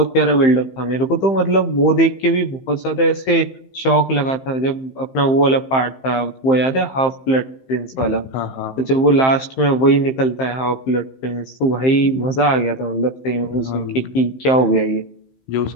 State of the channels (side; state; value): right; late; 15 ms